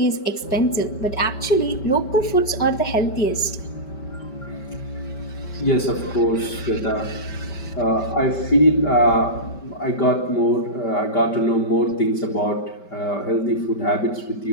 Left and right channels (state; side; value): late; right; 5.1 ms